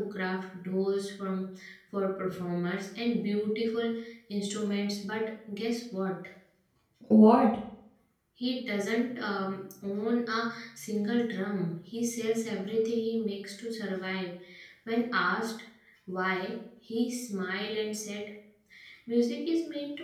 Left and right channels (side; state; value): both; identical; correlation 1.00